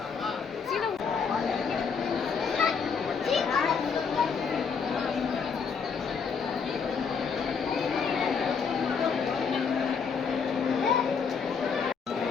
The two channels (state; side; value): quieter; right; 5.9 dB